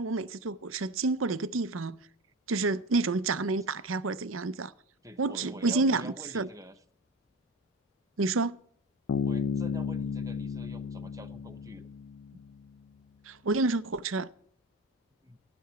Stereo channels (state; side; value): normal; both; correlation 0.27